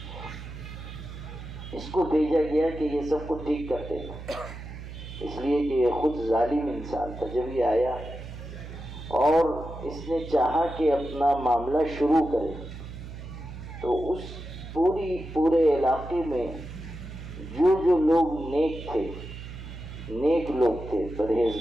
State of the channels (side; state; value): right; noise; hum, 11 dB below the sound